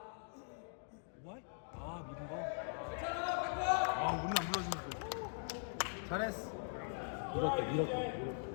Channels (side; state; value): right; silent; digital silence